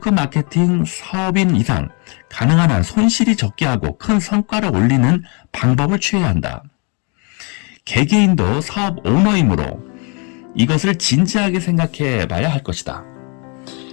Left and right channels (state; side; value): quieter; right; 34.3 dB